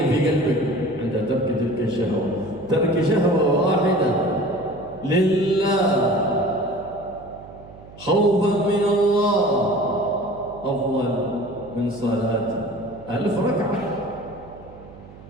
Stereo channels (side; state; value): right; noise; hum, 20 dB below the sound